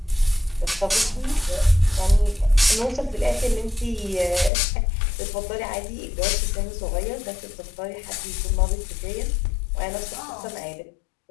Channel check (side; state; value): right; drops out; at 4.5 s